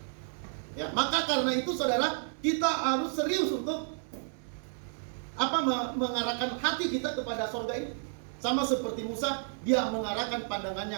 Ya, maka karena itu saudara, kita harus serius untuk mengarahkan hati kita kepada sorga ini. Sama seperti Musa, dia mengarahkan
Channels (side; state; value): left; silent; digital silence